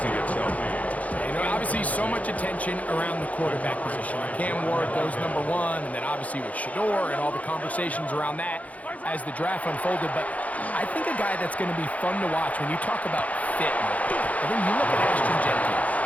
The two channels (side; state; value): right; late; 0.070 ms